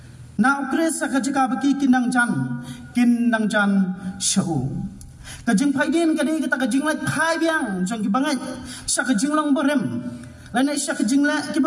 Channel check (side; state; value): both; identical; correlation 1.00